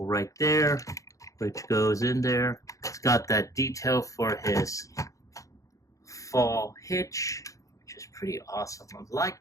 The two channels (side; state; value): right; late; 0.16 ms